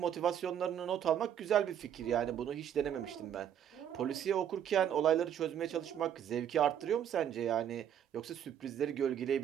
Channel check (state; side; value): quieter; left; 9.5 dB